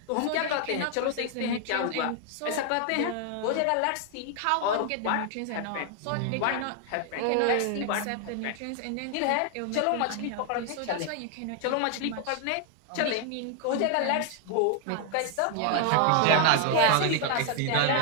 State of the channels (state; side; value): different; both; correlation 0.00